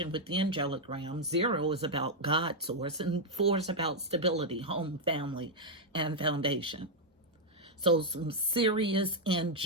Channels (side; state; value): both; normal; correlation -0.01